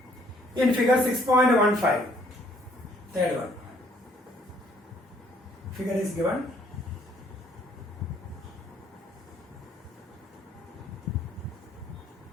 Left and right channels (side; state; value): both; normal; correlation 0.64